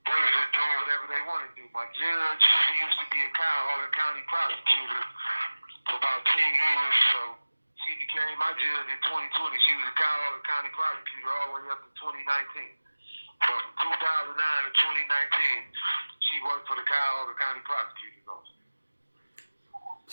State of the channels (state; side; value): inverted; both; correlation -1.00